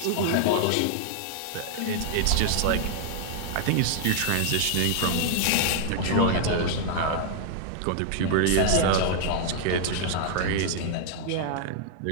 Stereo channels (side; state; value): both; different; correlation -0.01